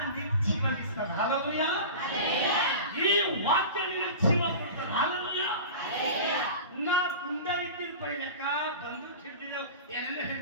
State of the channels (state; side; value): inverted; both; correlation -0.33